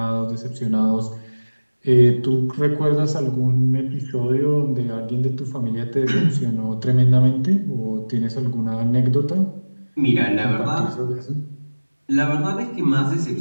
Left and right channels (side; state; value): both; inverted; correlation -1.00